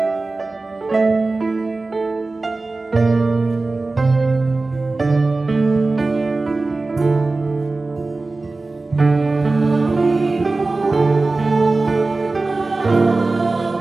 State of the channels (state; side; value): quieter; left; 3.4 dB